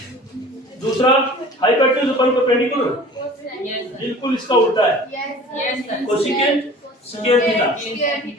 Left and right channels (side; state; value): both; normal; correlation 0.44